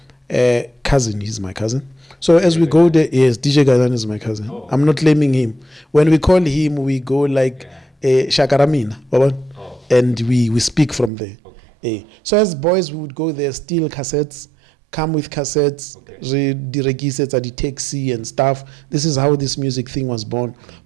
he's my cousin. So as we go there, yes, DJ Ganyan is my cousin. I'm not claiming him. When we call him, we go like Shakaramina, and we speak from there. So as boys, we would go there, steal cassettes, come with cassettes, the cassettes at the taxi and stuff. This is how this music thing was born.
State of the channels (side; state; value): left; drops out; at 11.1 s